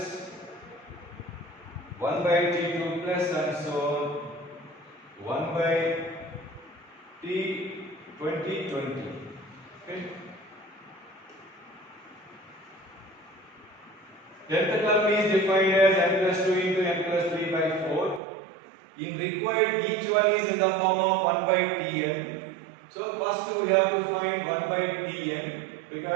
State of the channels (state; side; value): drops out; left; at 18.2 s